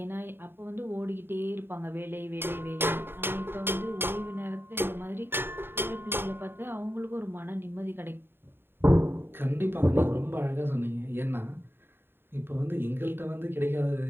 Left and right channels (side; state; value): left; late; 0.11 ms